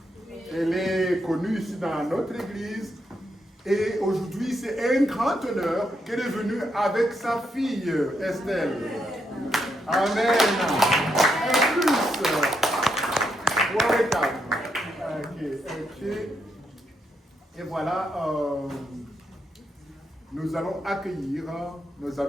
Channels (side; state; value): both; normal; correlation 0.79